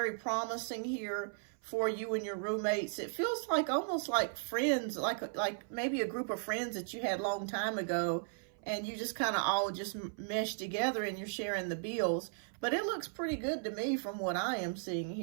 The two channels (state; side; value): silent; left; 54 dB below the other